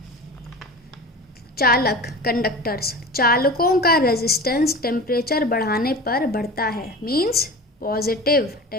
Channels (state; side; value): normal; both; correlation 0.33